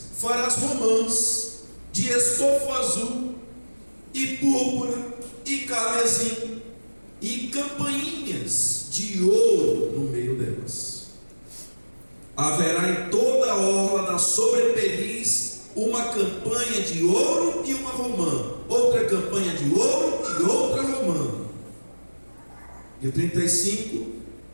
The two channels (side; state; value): both; inverted; correlation -1.00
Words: farás romãs de estofo azul e púrpura e carmesim e campainhas de ouro no meio delas. Haverá em toda a orla da sobrepeliz uma campanha de ouro e uma romã, outra campanha de ouro e outra romã. E o 35,